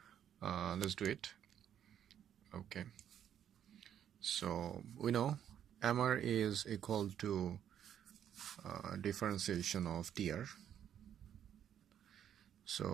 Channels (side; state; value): left; quieter; 9.7 dB